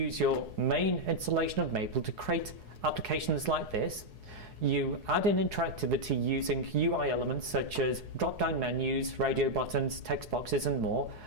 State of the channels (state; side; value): late; left; 4.7 ms